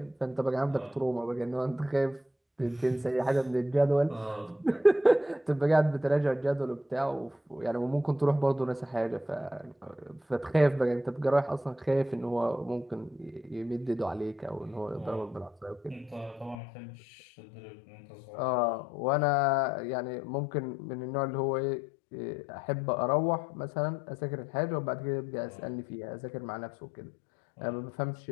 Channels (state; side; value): drops out; right; at 16.6 s